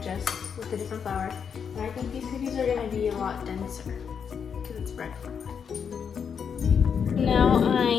just with a different flour. And I think these cookies are going to be a lot denser because it's bread flour. Now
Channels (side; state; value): right; quieter; 6.9 dB